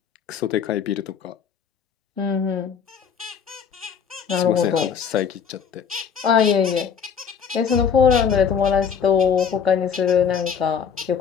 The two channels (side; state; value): right; quieter; 7.0 dB